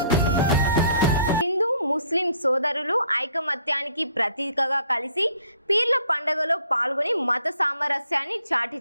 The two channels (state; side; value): inverted; both; correlation -0.61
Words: ముస్లిం సోదరులు ఐకమత్యానికి ప్రతీకగా కలిసి పీర్ల పండుగలో పాల్గొని మత సామరస్యాన్ని చాటి